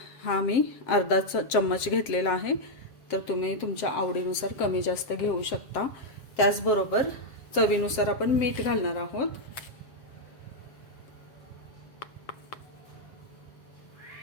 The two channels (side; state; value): right; late; 7.5 ms